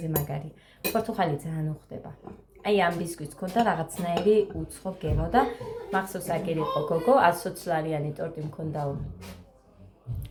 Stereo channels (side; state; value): both; identical; correlation 1.00